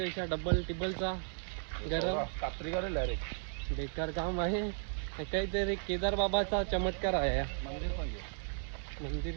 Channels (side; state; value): left; silent; digital silence